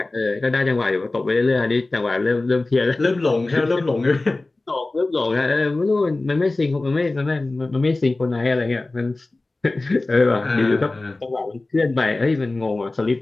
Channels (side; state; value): right; quieter; 3.1 dB